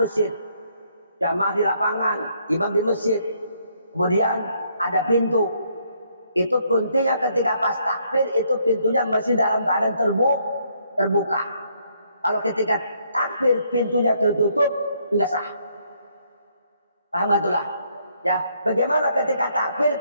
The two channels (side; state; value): both; inverted; correlation -0.70